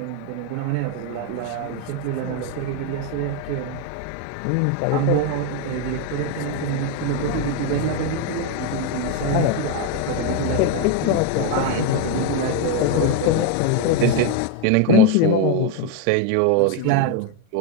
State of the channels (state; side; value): different; both; correlation 0.02